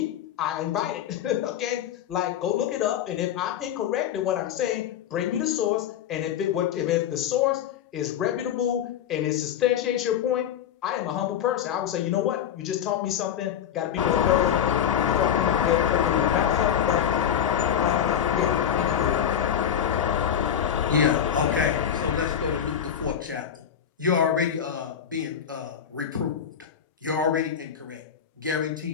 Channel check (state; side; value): quieter; right; 9.1 dB